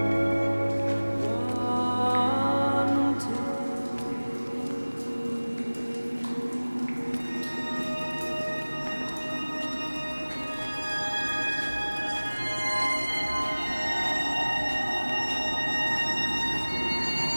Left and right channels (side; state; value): both; inverted; correlation -1.00